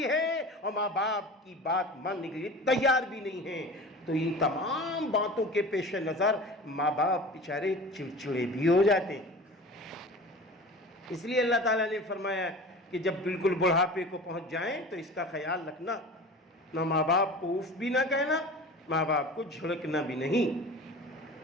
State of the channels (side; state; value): both; normal; correlation 0.37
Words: ہے اور ماں باپ کی بات ماننے کے لیے تیار بھی نہیں ہیں. تو ان تمام باتوں کے پیش نظر ماں باپ بیچارے چڑچڑے بھی ہو جاتے ہیں. اس لیے اللہ تعالیٰ نے فرمایا کہ جب بالکل بڑھاپے کو پہنچ جائیں تو اس کا خیال رکھنا، نہ ماں باپ کو اف بھی نہ کہنا، ماں باپ کو جھڑکنا بھی نہیں.